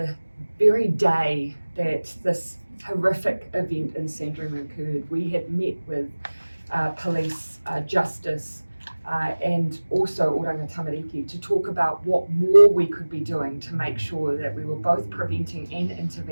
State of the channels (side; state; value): both; inverted; correlation -1.00